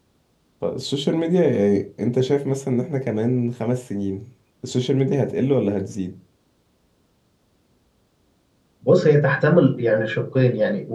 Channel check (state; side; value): identical; both; correlation 1.00